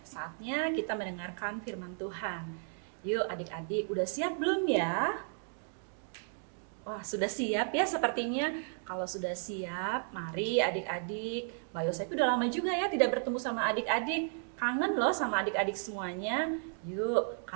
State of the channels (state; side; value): silent; left; 55 dB below the other